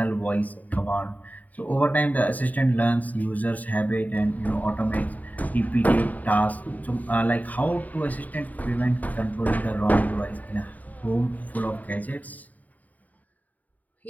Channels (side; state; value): right; late; 0.076 ms